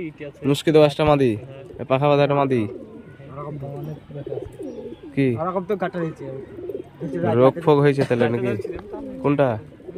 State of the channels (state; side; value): identical; both; correlation 1.00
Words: ইটে আছে। মুশকি দোয়াশটা মাদি, পাখা বাঁধাটা মাদি। কি তো কাটা দিয়েছে রোগ ফোগ হয়েছে তাহলে নাকি? কোনটা?